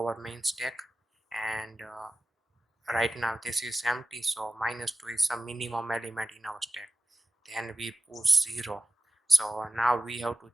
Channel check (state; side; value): normal; both; correlation 0.92